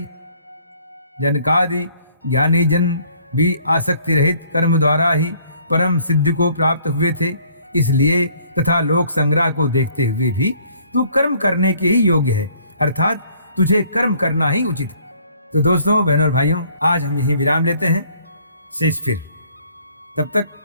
जनकादि ज्ञानी जन भी आसक्ति रहित कर्म द्वारा ही परम सिद्धि को प्राप्त हुए थे, इसलिए तथा लोक संग्रह को देखते हुए भी तू कर्म करने के ही योग्य है, अर्थात तुझे कर्म करना ही उचित है। तो दोस्तों, बहनों और भाइयों, आज हम यहीं विराम लेते हैं। शेष फिर, तब तक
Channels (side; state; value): both; inverted; correlation -0.60